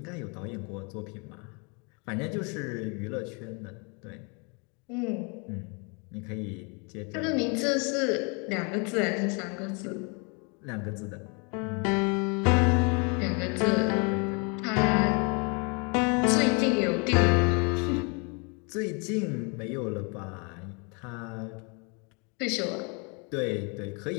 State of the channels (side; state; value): right; quieter; 33.2 dB